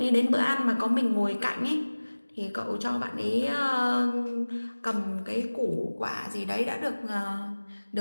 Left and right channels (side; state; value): both; inverted; correlation -1.00